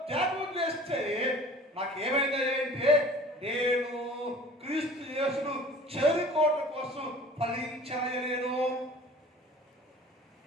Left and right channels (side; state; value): both; normal; correlation 0.46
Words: త్యాగం చేస్తే నాకు ఏమైనా అంటే నేను క్రీస్తు యేసును చేరుకోవడం కోసం ఫలించలేను.